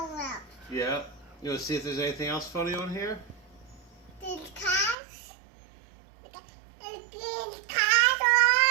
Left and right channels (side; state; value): left; drops out; at 5.0 s